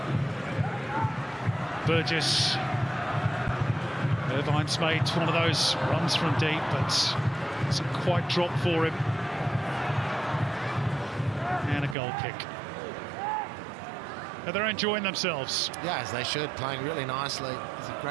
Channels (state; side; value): drops out; left; at 12.0 s